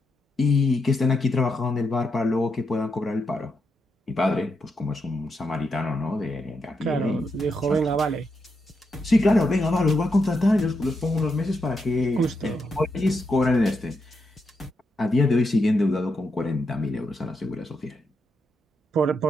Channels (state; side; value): normal; both; correlation 0.83